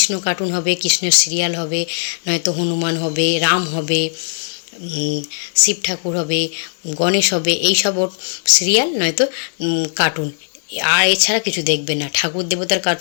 কার্টুন হবে, কৃষ্ণের সিরিয়াল হবে, নয়তো হনুমান হবে, রাম হবে, শিব ঠাকুর হবে, গণেশ হবে, এইসব ওর সিরিয়াল নয়তো কার্টুন। আর এছাড়া কিছু দেখবে না, ঠাকুর দেবতার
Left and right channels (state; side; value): silent; right; digital silence